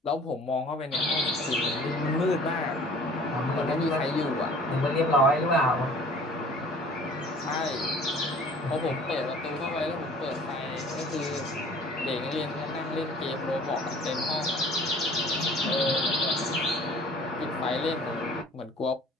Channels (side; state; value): both; normal; correlation 0.49